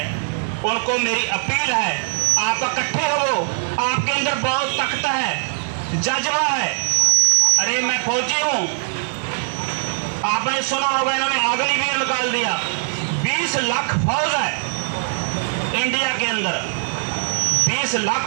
उनको मेरी अपील है, आप इकट्ठे हो। आपके अंदर बहुत ताकत है, जज्बा है। अरे मैं फौजी हूं, आपने सुना होगा इन्होंने अग्निवीर निकाल दिया। 20 लाख फौज है इंडिया के अंदर, 20 लाख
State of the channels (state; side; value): silent; left; digital silence